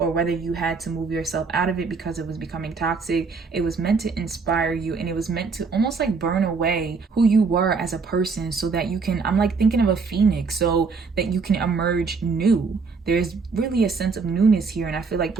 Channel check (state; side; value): quieter; left; 4.7 dB